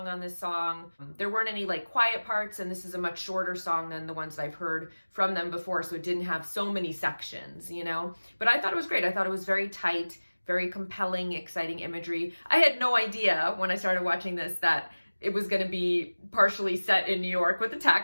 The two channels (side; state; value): both; inverted; correlation -1.00